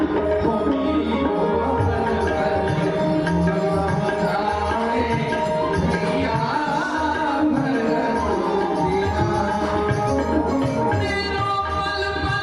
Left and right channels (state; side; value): identical; both; correlation 1.00